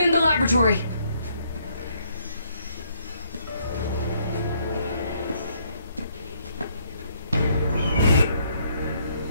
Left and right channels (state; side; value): inverted; both; correlation -0.70